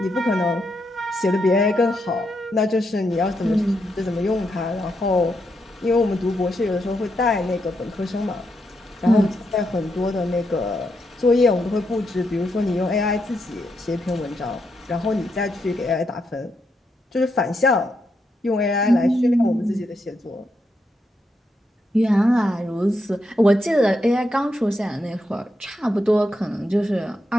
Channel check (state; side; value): normal; both; correlation 0.82